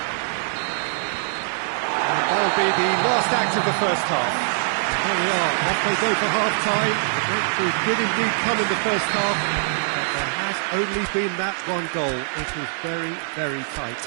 And that'll be the last act of the first half. There we are, off they go for half-time. It did indeed come in the first half, but there has only been that one goal. It was very, very tight.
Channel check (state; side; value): silent; left; digital silence